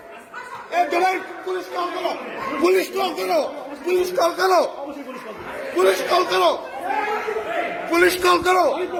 পুলিশ কল করো, পুলিশ কল করো, পুলিশ কল করো, পুলিশ কল করো, পুলিশ কল করো।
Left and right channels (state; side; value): identical; both; correlation 1.00